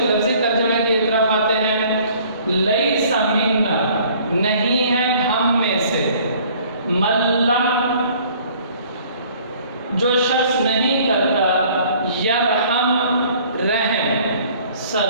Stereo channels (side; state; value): both; inverted; correlation -0.55